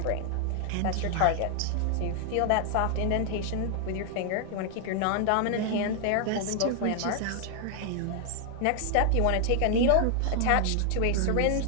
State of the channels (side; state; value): both; different; correlation 0.00